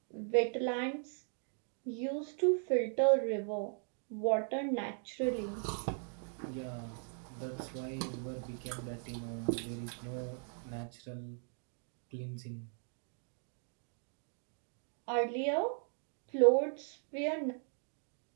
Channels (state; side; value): silent; left; 52 dB below the other